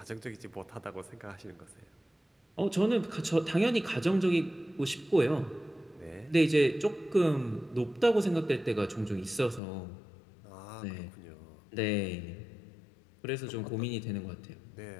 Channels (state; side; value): drops out; right; at 9.6 s